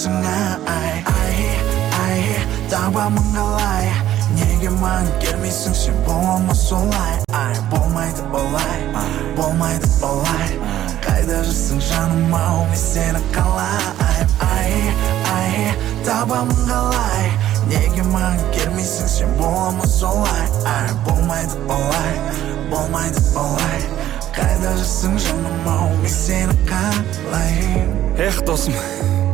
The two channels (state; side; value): quieter; left; 12.6 dB